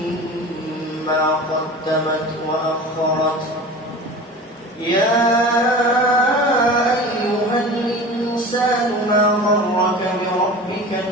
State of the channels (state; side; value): normal; both; correlation 0.36